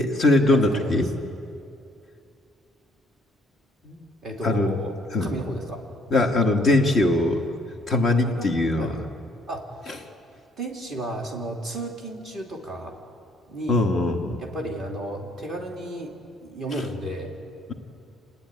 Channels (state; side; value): normal; both; correlation 0.64